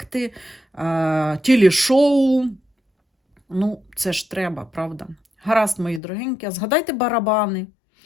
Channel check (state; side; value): drops out; right; at 6.0 s